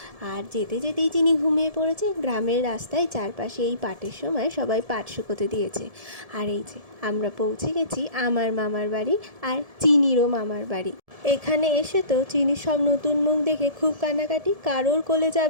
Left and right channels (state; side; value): late; left; 1.7 ms